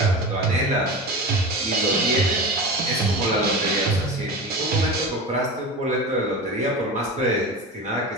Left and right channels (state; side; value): normal; both; correlation 0.28